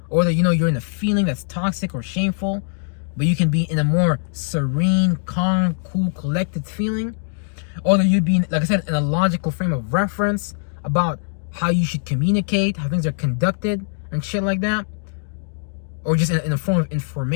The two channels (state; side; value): silent; right; digital silence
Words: Or that, you're in a feeling that's toxic or shameful, but you can be in a more serene, calm, cool, collected feeling. Or that you'd be, like I said, in a logical frame of reference about how you should communicate, how things are conducted, and shit like that. Or just in a form of